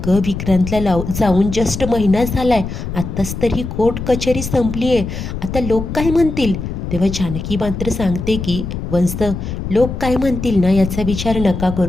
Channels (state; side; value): noise; left; rumble, 6 dB below the sound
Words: विक्रांतला जाऊन जस्ट महिना झालाय, आत्ताच तर ही कोर्ट कचेरी संपली आहे, आता लोक काय म्हणतील. तेव्हा जानकी मात्र सांगते की वंश, लोक काय म्हणतील ना याचा विचार नका